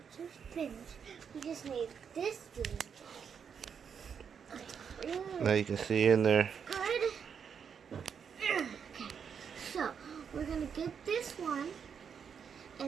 to finish. We just need this blanket. Now you can see in there. Good. So, we're going to get this one,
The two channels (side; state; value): left; quieter; 7.0 dB